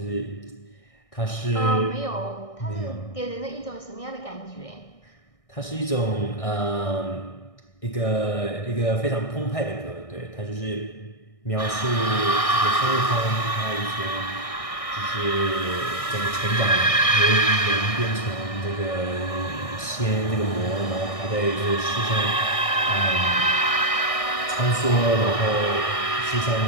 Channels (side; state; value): right; late; 1.6 ms